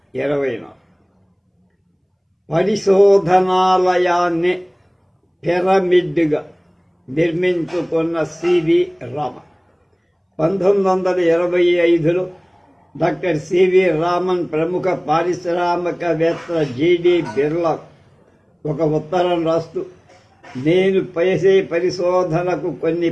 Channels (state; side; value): identical; both; correlation 1.00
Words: పరిశోధనాలయాన్ని పిరమిడ్గా నిర్మించుకున్న సివి రామన్ 1925లో డాక్టర్ సివి రామన్ ప్రముఖ పారిశ్రామికవేత్త జిడి బిర్లా ఒక ఉత్తరం రాస్తూ, నేను చేసే పరిశోధనకు కొన్ని